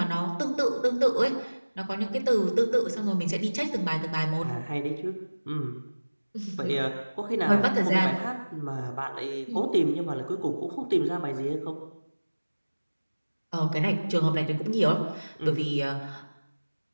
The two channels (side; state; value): both; inverted; correlation -1.00